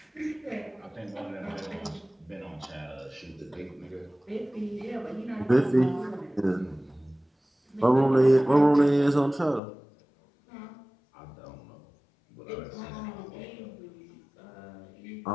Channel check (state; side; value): drops out; right; at 9.6 s